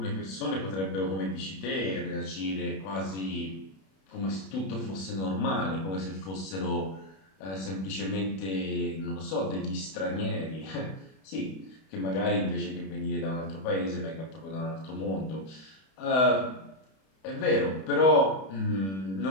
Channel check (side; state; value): right; late; 31 ms